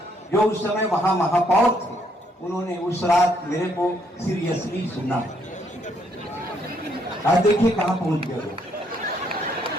जो उस समय वहां महापौर थे। उन्होंने उस रात मेरे को सीरियसली सुना। आज देखिए कहां पहुंच गए लोग।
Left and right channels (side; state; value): both; normal; correlation 0.71